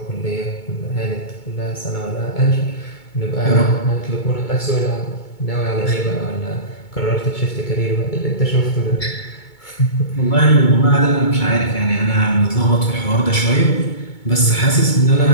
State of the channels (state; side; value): late; right; 2.2 ms